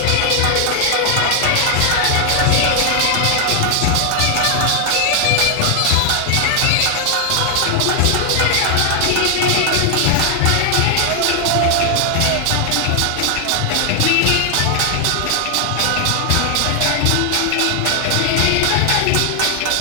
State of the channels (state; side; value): different; both; correlation 0.00